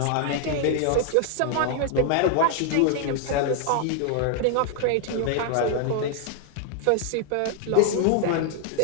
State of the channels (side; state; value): both; different; correlation 0.00